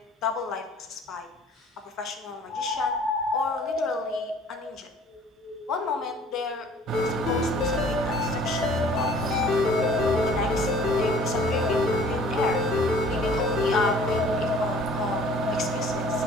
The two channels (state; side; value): normal; both; correlation 0.52